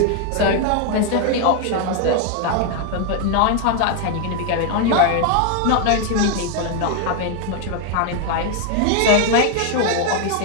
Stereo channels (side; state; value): both; different; correlation 0.01